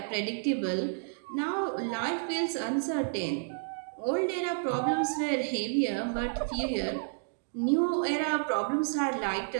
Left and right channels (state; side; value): silent; left; digital silence